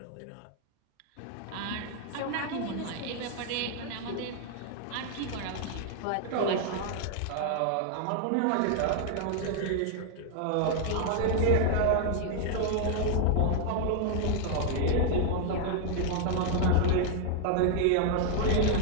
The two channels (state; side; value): different; both; correlation 0.00